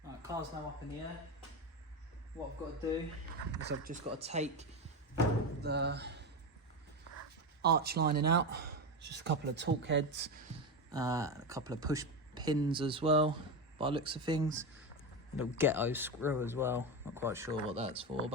Right, car's now up in the air. What I've got to do is I've just got to take the arch lining out. It's just a couple of torque heads, a couple of push pins as well, by the looks of things. A little ghetto screw as well. Not quite sure what that's for,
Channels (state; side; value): normal; both; correlation 0.16